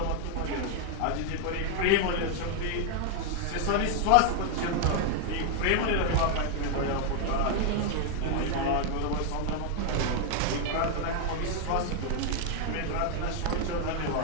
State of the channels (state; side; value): different; both; correlation 0.00